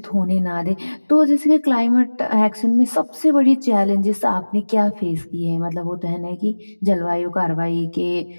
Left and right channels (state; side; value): inverted; both; correlation -1.00